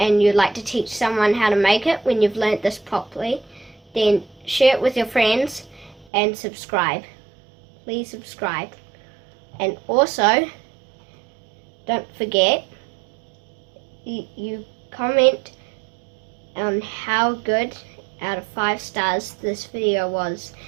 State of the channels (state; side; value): drops out; left; at 6.1 s